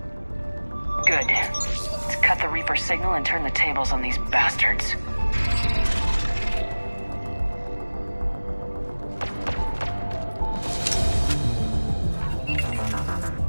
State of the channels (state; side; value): inverted; both; correlation -1.00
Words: Good. Let's cut the Reaper signal and turn the tables on these bastards.